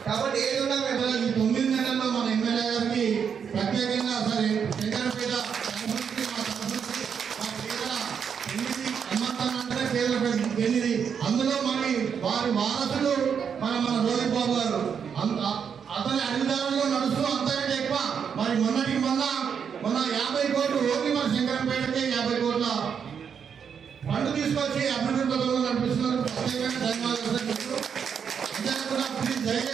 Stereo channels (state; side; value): quieter; left; 7.1 dB